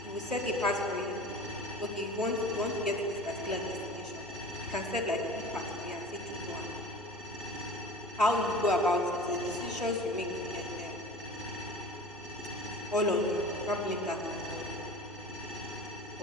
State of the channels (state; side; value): normal; both; correlation 0.38